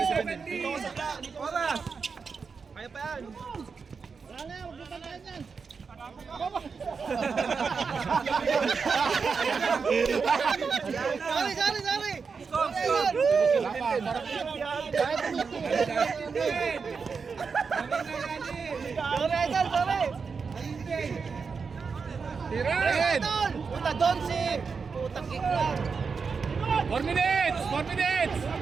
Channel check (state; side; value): quieter; left; 5.3 dB